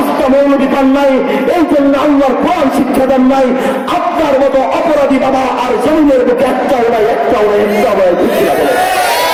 মৌলবি পান নাই, এই জন্য আল্লাহর কোরআন শিক্ষা দেন নাই। আপনার মতো অপরাধী বাবা আর জমিনের বুকে একটাও নাই।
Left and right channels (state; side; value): identical; both; correlation 1.00